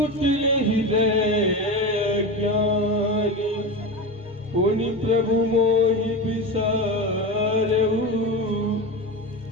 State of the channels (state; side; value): noise; left; rumble, 27 dB below the sound